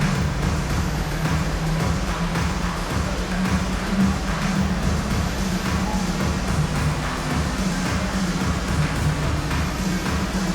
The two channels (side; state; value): both; identical; correlation 1.00